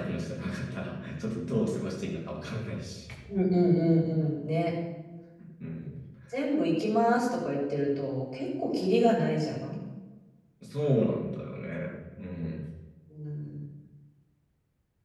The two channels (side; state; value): both; identical; correlation 1.00